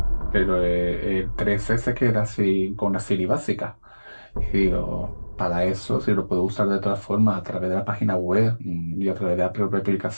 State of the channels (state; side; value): inverted; both; correlation -1.00